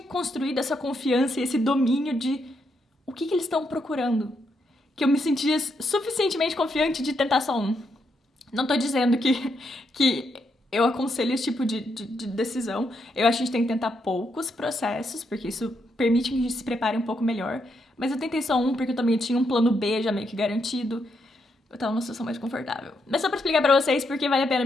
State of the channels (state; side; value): normal; both; correlation 0.79